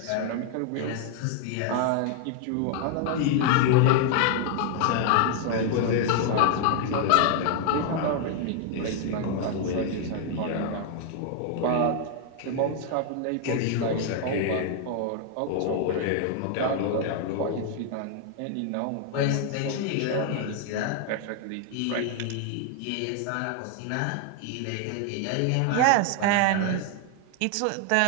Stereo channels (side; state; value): both; different; correlation 0.00